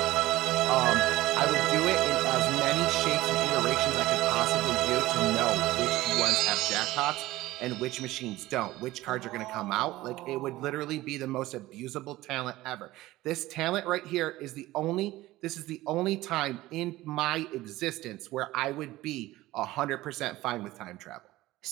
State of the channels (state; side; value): quieter; left; 17.3 dB